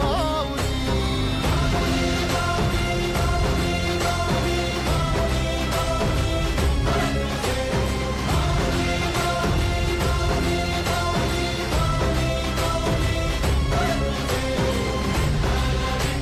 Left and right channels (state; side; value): identical; both; correlation 1.00